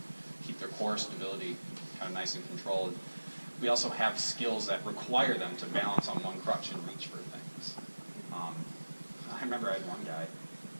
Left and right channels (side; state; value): both; inverted; correlation -1.00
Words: keep their core stability kind of nice and controlled. We also have skills that require them to balance on one crutch and reach for things. I remember I had one guy,